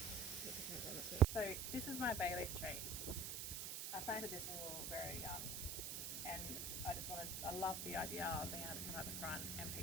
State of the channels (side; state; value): right; noise; hiss, 3 dB below the sound